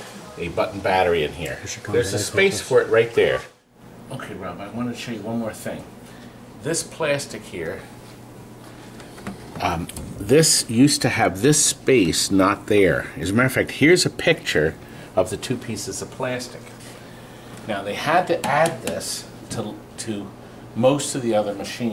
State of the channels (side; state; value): both; identical; correlation 1.00